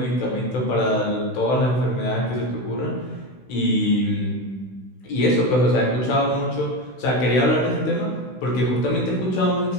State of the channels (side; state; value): right; late; 16 ms